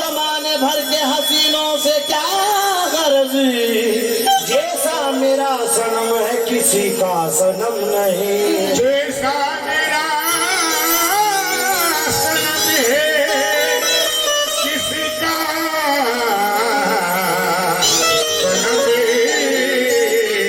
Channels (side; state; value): both; identical; correlation 1.00